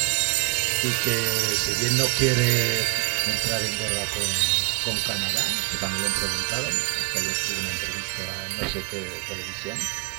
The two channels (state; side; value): quieter; left; 33.5 dB